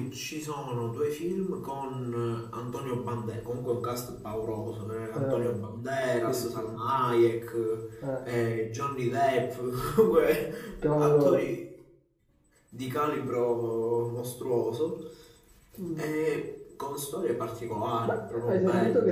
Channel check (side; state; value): both; identical; correlation 1.00